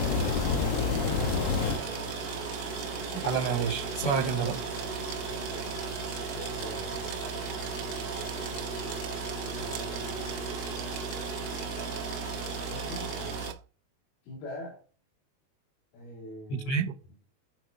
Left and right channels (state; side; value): late; right; 21 ms